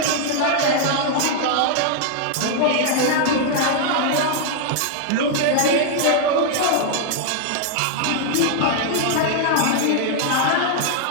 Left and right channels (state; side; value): different; both; correlation 0.00